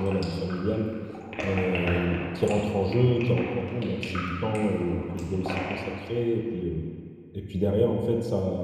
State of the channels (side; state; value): both; identical; correlation 1.00